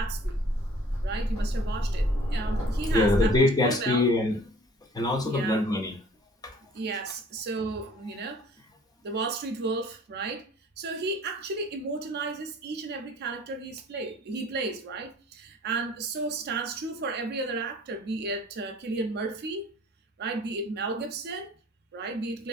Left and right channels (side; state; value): both; normal; correlation 0.51